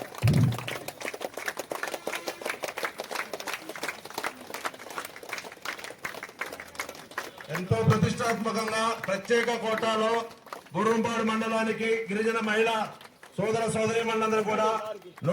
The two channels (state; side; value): identical; both; correlation 1.00